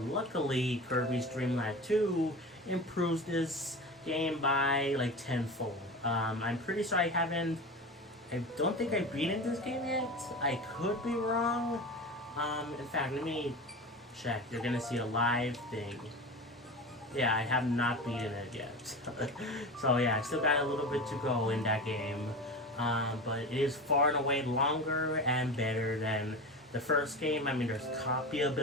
luckily, Kirby's Dream Land 2 improves this game by like tenfold. I'm pretty sure I don't think I beaten this game yet. I could be wrong. In fact, let me check. You're gonna see a live thing. Yeah, I have not beaten it yet. So yeah, I still got a little bit to go in that game. But it is far and away longer and better than the first game. I mean, there's copy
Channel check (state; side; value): normal; both; correlation 0.29